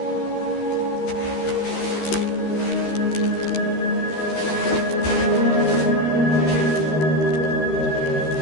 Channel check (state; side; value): late; right; 13 ms